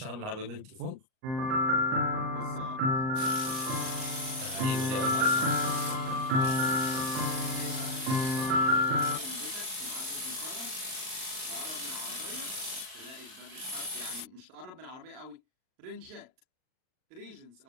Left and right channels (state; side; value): late; left; 38 ms